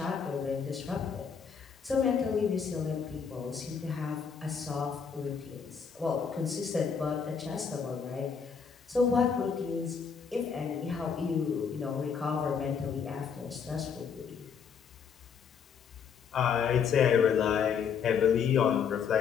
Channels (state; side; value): quieter; right; 6.6 dB